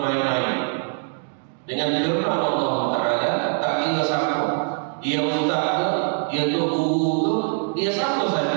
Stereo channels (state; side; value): silent; left; 59 dB below the other